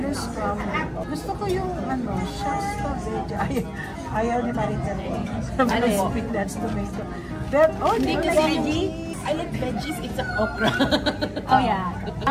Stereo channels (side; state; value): both; identical; correlation 1.00